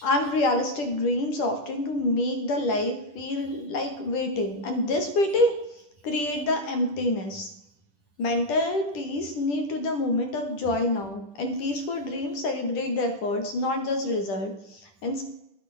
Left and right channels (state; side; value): late; right; 10 ms